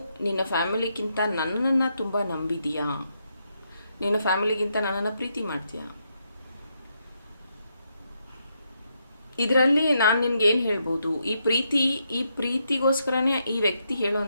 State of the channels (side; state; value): both; inverted; correlation -0.80